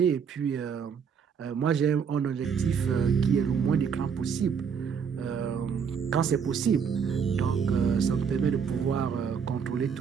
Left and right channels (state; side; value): quieter; left; 6.7 dB